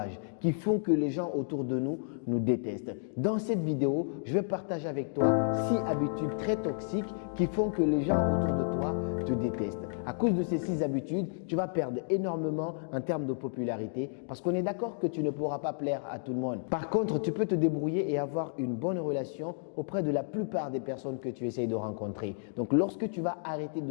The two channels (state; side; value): silent; right; digital silence